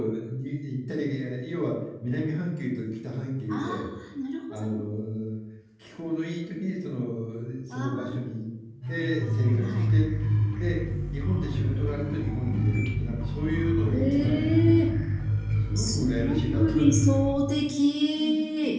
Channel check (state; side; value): identical; both; correlation 1.00